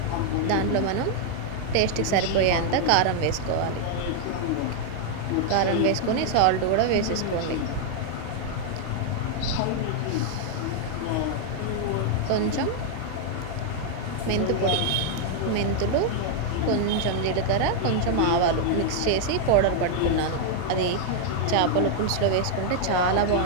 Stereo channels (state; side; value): different; both; correlation 0.00